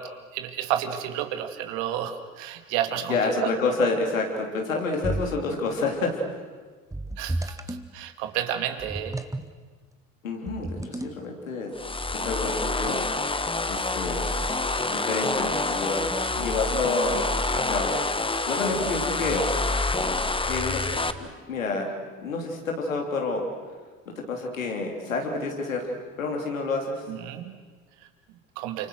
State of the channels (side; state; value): both; normal; correlation 0.30